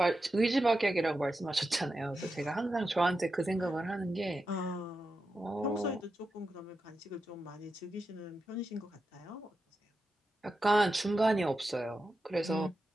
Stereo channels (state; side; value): normal; both; correlation 0.90